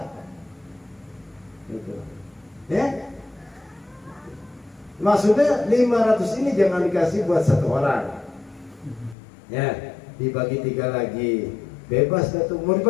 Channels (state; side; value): drops out; right; at 9.2 s